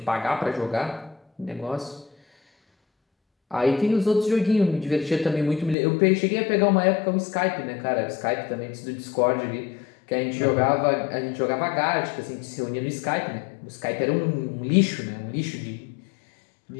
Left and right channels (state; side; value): drops out; right; at 5.8 s